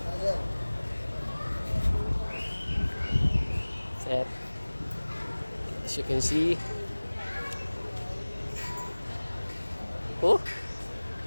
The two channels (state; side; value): inverted; both; correlation -1.00